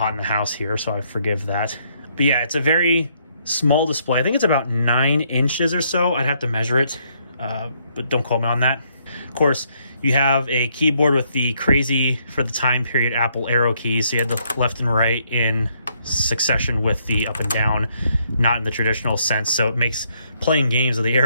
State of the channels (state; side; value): inverted; both; correlation -0.71